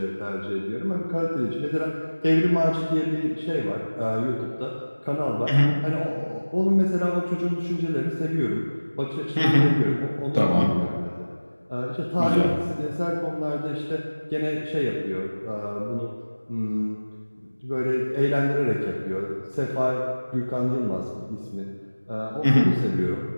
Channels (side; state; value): both; inverted; correlation -1.00